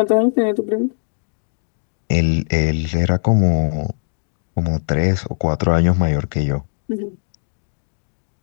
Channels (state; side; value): silent; right; digital silence